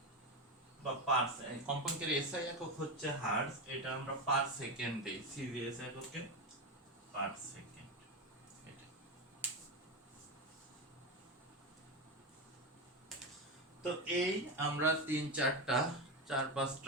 বা পার, কম্পাঙ্কের এসআই একক হচ্ছে হার্টজ, এটা আমরা পার সেকেন্ড দেই, সিজিএস এককে পার সেকেন্ড। তো এই আমরা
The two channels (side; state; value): both; normal; correlation 0.15